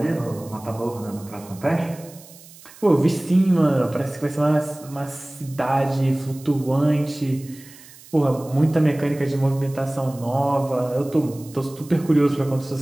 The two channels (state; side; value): noise; right; hiss, 21 dB below the sound